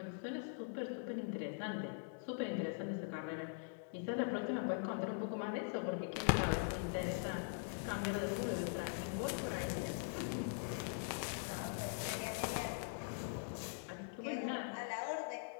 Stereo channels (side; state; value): right; silent; digital silence